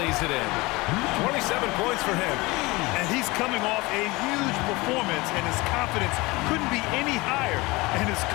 it in. 27 points for him. And he's coming off a huge performance, and his confidence couldn't be any higher. And his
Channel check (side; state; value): right; quieter; 22.8 dB